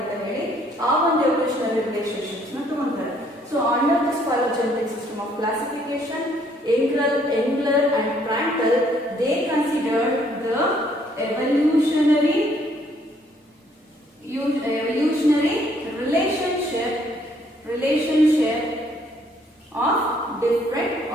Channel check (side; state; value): both; normal; correlation 0.65